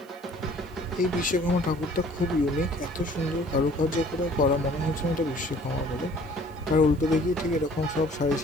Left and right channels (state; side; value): noise; right; hiss, 29 dB below the sound